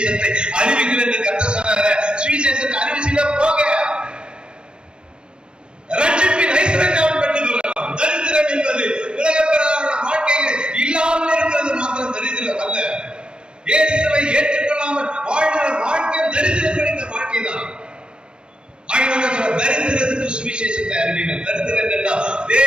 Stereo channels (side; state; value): left; late; 0.051 ms